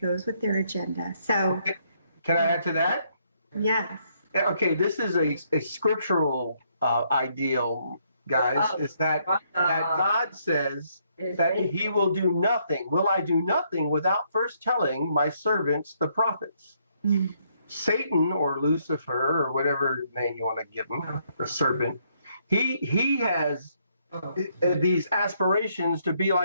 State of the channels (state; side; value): inverted; both; correlation -0.71